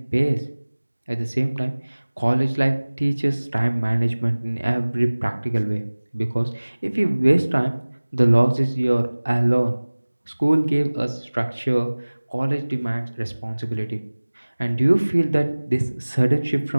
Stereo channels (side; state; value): both; inverted; correlation -1.00